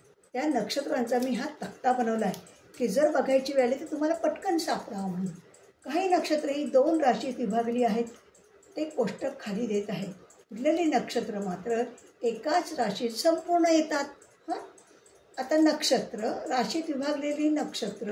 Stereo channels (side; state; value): both; identical; correlation 1.00